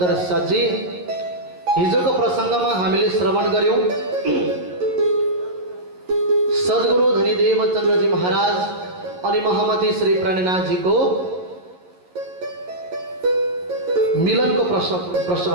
साजी हिजोको प्रसंगमा हामीले श्रवण गर्यौं सद्गुरु धनीदेव चन्द्रजी महाराज अनि महामती श्री प्राणनाथ जी को मिलनको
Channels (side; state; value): left; late; 11 ms